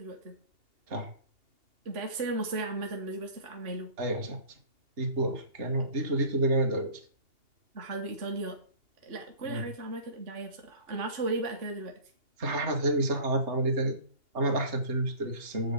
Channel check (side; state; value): left; late; 2.8 ms